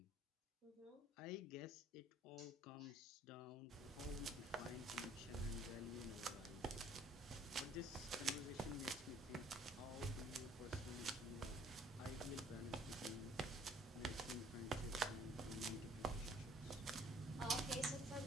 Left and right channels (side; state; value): both; normal; correlation 0.58